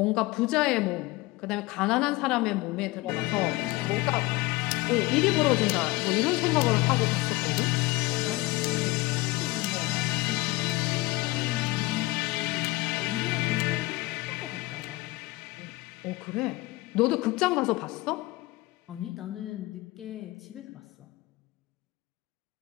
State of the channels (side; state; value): right; quieter; 21.2 dB